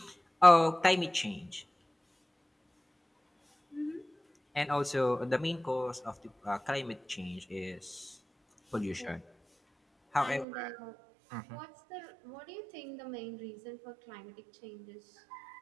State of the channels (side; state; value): left; drops out; at 10.5 s